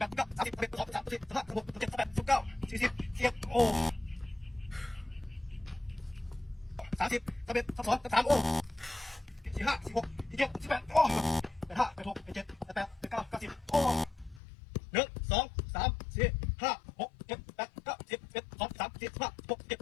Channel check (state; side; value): drops out; right; at 14.4 s